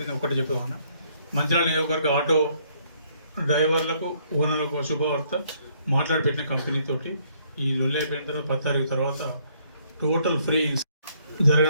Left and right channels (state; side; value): inverted; both; correlation -0.67